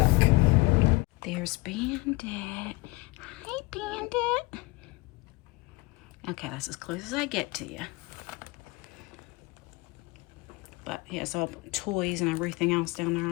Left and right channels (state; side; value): quieter; right; 24.1 dB